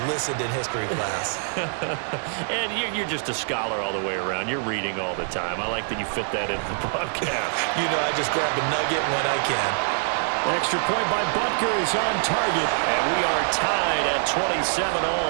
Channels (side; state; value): left; silent; digital silence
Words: listened in history class. And you're just a scholar all the way around. You're reading all the time. I like that you fit that into the broadcast. You know, I just grab a nugget when I can. Extra point by Butker is on target. And we are tied at 27